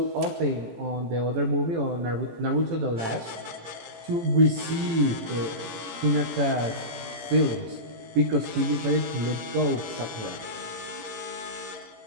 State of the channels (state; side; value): late; left; 17 ms